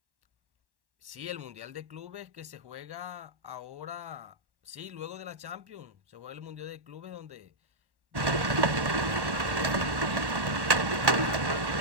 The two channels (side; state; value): left; late; 1.1 ms